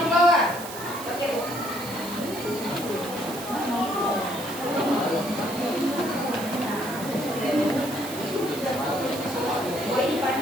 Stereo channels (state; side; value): noise; right; hiss, 11 dB below the sound